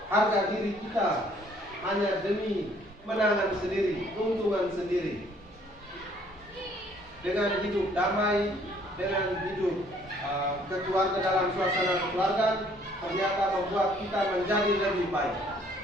harga diri kita hanya demi menangan sendiri, keuntungan sendiri, dengan hidup damai, dengan hidup keluarga dalam suasana kekeluargaan, ternyata membuat kita menjadi lebih baik?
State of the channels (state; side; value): normal; both; correlation 0.61